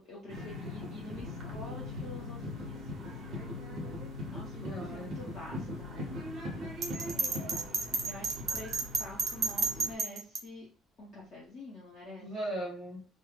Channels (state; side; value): normal; both; correlation 0.57